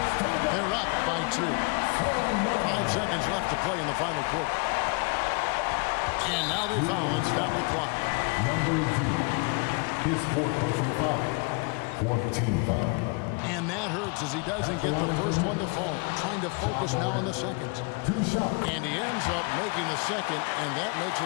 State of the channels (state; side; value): quieter; right; 31.7 dB